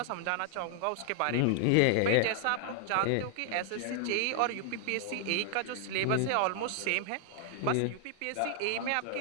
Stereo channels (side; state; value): both; different; correlation 0.00